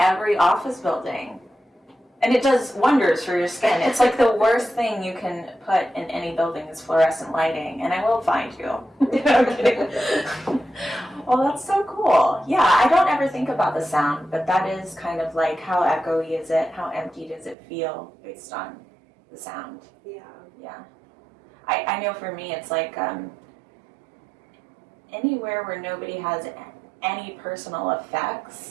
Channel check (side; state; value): left; drops out; at 17.6 s